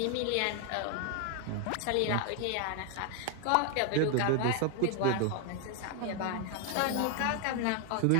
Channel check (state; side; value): different; both; correlation 0.00